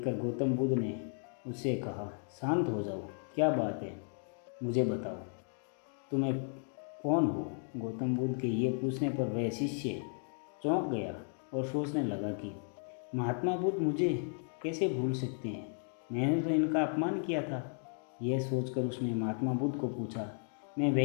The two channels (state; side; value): silent; right; 55 dB below the other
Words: गौतम बुद्ध ने उससे कहा, शांत हो जाओ, क्या बात है, मुझे बताओ, तुम्हें कौन हो। गौतम बुद्ध के ये पूछने पर वह शिष्य चौंक गया और सोचने लगा कि महात्मा बुद्ध मुझे कैसे भूल सकते हैं, मैंने तो इनका अपमान किया था। यह सोचकर उसने महात्मा बुद्ध को पूछा, मैं